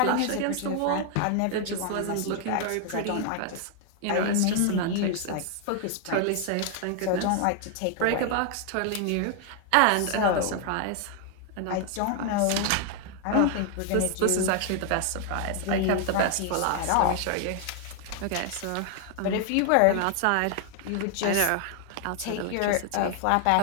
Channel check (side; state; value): both; different; correlation 0.00